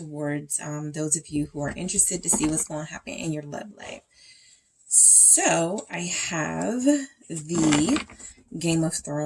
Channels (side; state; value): both; identical; correlation 1.00